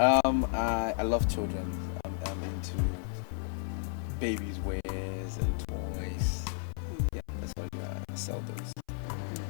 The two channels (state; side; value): silent; right; 56 dB below the other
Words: love children. I'm into babies' wares and toys. Yeah, that's what I do. I sell those.